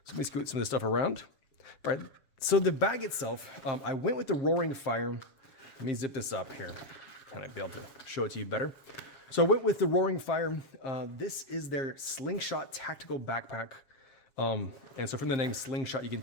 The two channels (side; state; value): right; late; 7.5 ms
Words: So let me scoot some of this stuff around. All right, so the bag itself, I went with the Roaring Fire. Let me zip this up here, kind of be able to show it to you better. So I went with the Roaring Fire. This is their Slingshot Tactical Backpack. And so from the name Slingshot, you can